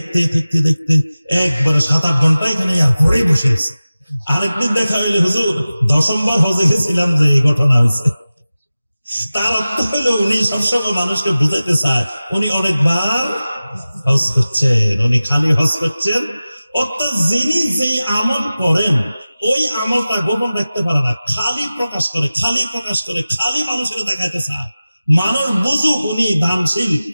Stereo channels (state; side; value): inverted; both; correlation -0.96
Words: একবারে 7-8 ঘন্টা এখানে ঘরে বসে গেছে। আরেকদিন দেখা হইলে, হুজুর 10ম বার হজে গেছিলাম যে এই ঘটনা হয়েছে। তার অর্থ হইল উনি সবসময় মানুষকে বুঝাইতে চায় উনি অনেকবার হজ করছেন, উনি খালি হজ করছেন। অর্থাৎ যিনি যেই আমল করেন ওই আমলটা গোপন রাখতে পারে না, খালি প্রকাশ করে, খালি মানুষের দেখাইতে চায়। মানুষ বুঝুক উনি দানশীল,